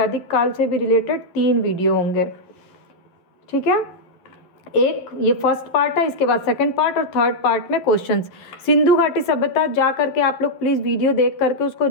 काल से भी रिलेटेड 3 वीडियो होंगे, ठीक है। एक ये फर्स्ट पार्ट है, इसके बाद सेकंड पार्ट और थर्ड पार्ट में क्वेश्चंस। सिंधु घाटी सभ्यता जा करके आप लोग प्लीज़ वीडियो देख करके उसको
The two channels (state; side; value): late; right; 12 ms